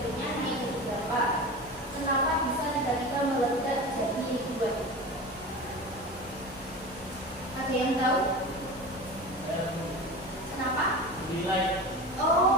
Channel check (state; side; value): normal; both; correlation 0.31